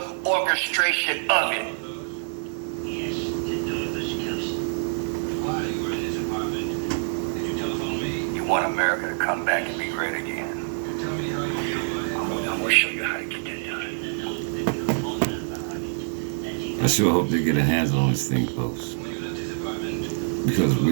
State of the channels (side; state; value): left; silent; 60 dB below the other